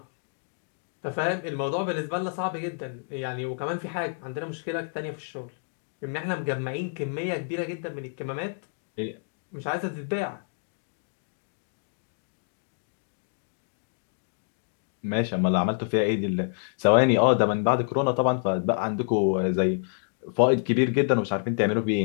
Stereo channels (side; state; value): right; silent; digital silence